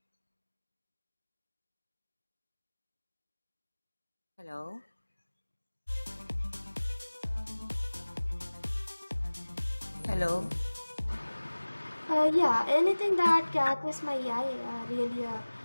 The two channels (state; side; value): inverted; both; correlation -1.00